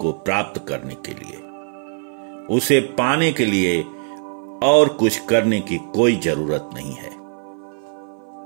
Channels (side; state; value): left; silent; 56 dB below the other